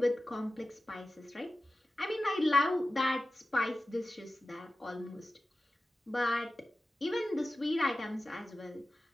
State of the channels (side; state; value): both; normal; correlation 0.94